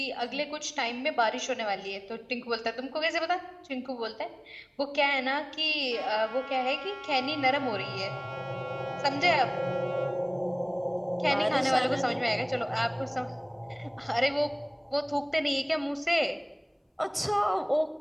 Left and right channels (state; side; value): identical; both; correlation 1.00